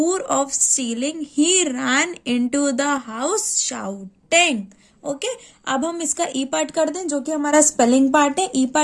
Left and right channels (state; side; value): identical; both; correlation 1.00